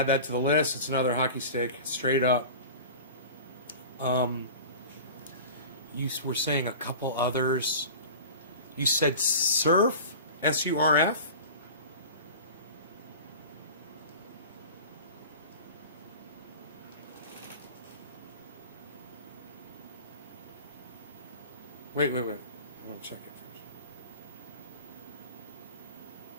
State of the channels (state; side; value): inverted; both; correlation -0.36